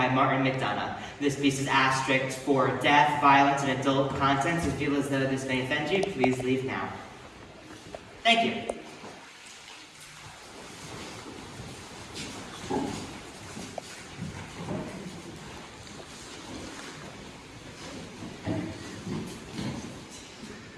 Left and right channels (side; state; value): both; identical; correlation 1.00